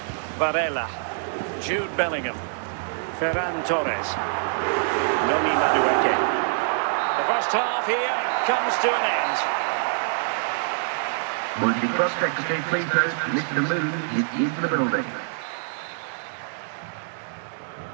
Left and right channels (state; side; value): silent; left; 62 dB below the other